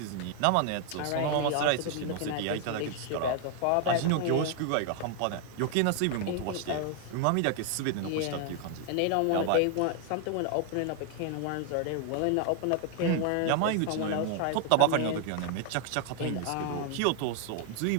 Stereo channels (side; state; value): both; different; correlation 0.00